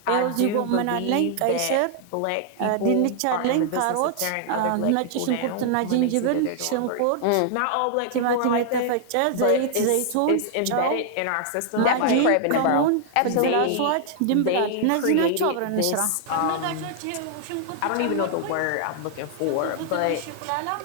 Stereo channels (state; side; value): different; both; correlation 0.00